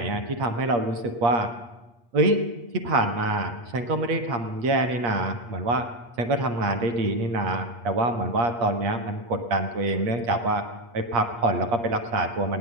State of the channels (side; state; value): left; late; 8.5 ms